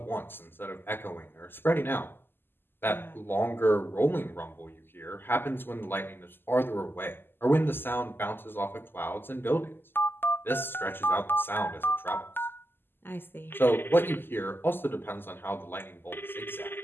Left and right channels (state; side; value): late; right; 0.10 ms